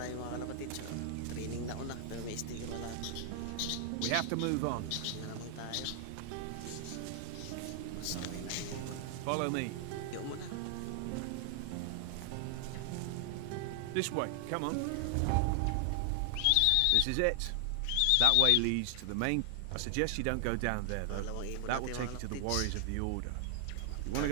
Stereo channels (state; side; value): different; both; correlation 0.00